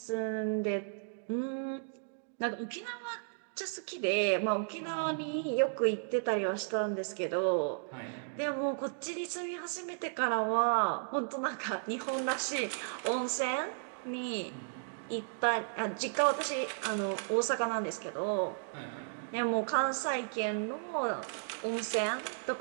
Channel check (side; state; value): left; silent; digital silence